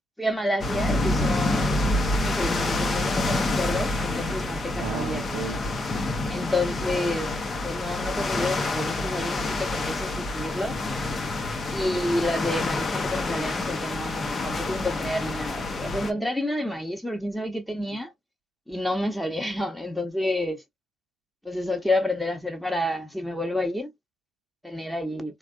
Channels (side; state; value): both; normal; correlation 0.82